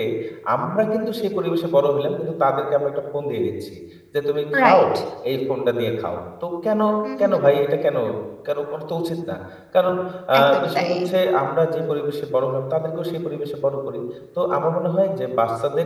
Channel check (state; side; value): identical; both; correlation 1.00